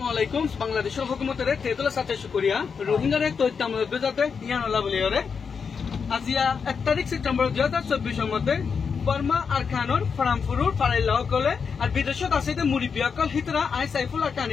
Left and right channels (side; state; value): right; quieter; 6.0 dB